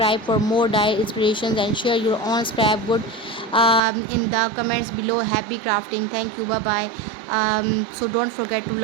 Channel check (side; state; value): left; drops out; at 3.8 s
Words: for more diet inspirations, and share your own scrap wood in the comments below. Happy crafting. Thank you. Bye bye. So don't forget to